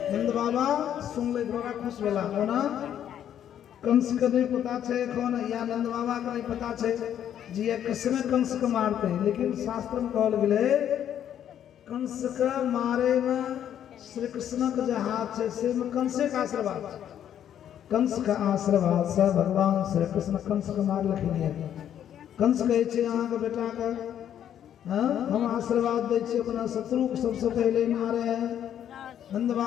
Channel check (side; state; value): right; quieter; 10.0 dB